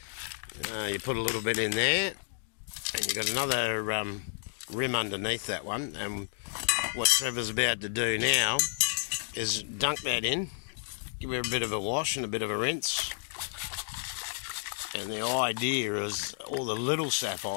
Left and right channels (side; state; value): right; silent; digital silence